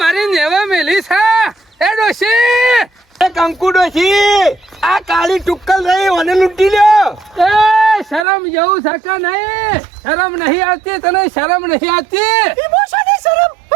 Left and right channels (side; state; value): left; drops out; at 8.2 s